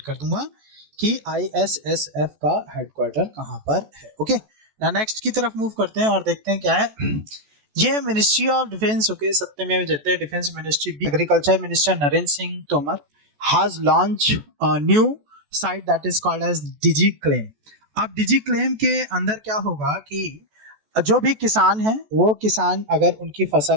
कर दूंगा कि ISSF का हेडक्वार्टर कहाँ पर है, ओके। ना नेक्स्ट की तरफ मूव करते हैं और देखते हैं क्या है। ये मिनिस्ट्री ऑफ डिफेंस, ओके, सत्यमेव जयते, defence ministry, agriculture minister Narendra Singh Tomar has launch a new site that is called as digi claim. अब डिजी क्लेम के अंदर क्या होगा कि जो भी किसान है, वो किसान अगर उनकी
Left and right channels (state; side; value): late; left; 14 ms